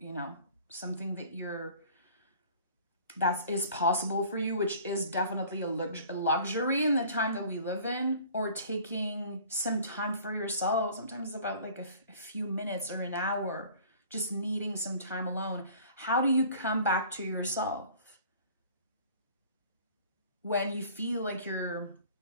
something that is possible for you, which is definitely a luxury in the time that we live in, or taking some time for yourself. Sometimes it's about like a few minutes or an hour, just needing some time alone. How do you come back to yourself when you feel like you're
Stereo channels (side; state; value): both; inverted; correlation -0.49